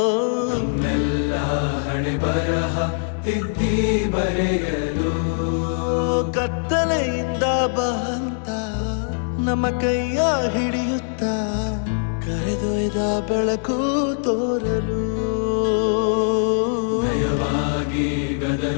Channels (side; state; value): right; silent; digital silence